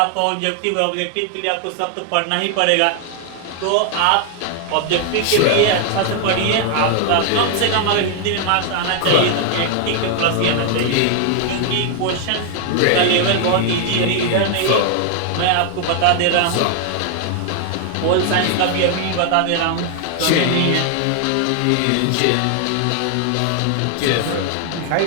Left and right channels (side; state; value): both; different; correlation 0.00